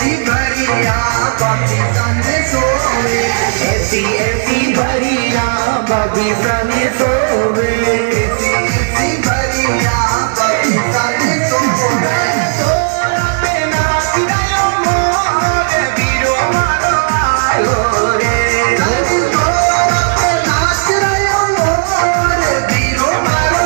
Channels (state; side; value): silent; left; digital silence